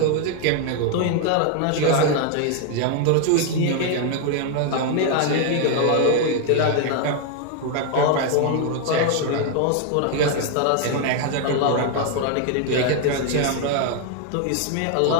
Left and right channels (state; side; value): different; both; correlation 0.00